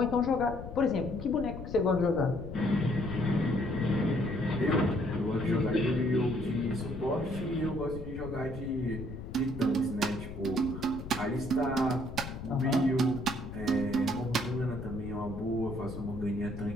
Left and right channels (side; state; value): left; noise; rumble, 10 dB below the sound